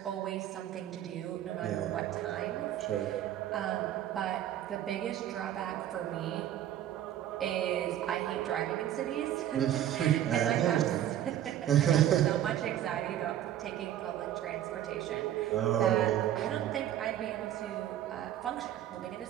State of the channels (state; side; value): quieter; left; 11.6 dB